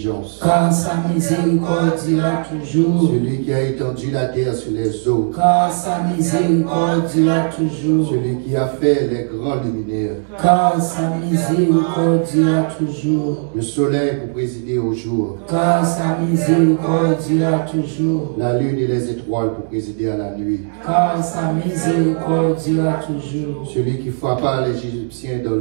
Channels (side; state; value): left; silent; digital silence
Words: Car sa miséricorde dure toujours. Celui qui a étendu la terre sur les eaux. Car sa miséricorde dure toujours. Celui qui a fait les grands luminaires. Car sa miséricorde dure toujours. Le soleil pour présider au jour. Car sa miséricorde dure toujours. La lune et les étoiles pour présider à la nuit. Car sa miséricorde dure toujours. Celui qui frappa les Égyptiens dans